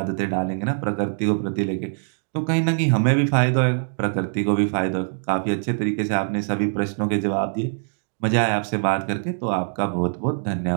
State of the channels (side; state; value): left; silent; digital silence